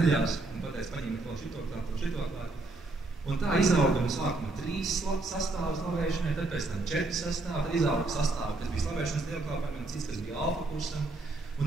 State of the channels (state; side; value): quieter; left; 3.3 dB